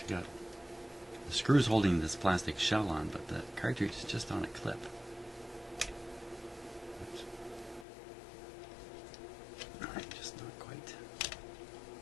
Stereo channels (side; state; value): right; drops out; at 7.9 s